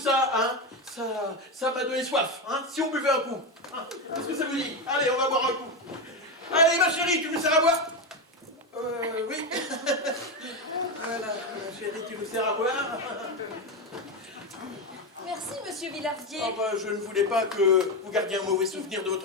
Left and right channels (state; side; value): normal; both; correlation 0.13